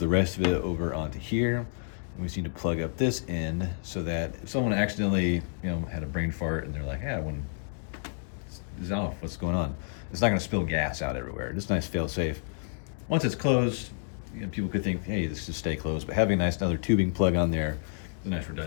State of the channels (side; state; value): right; silent; digital silence